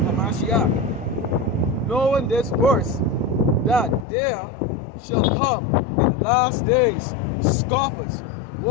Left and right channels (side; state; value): right; drops out; at 4.0 s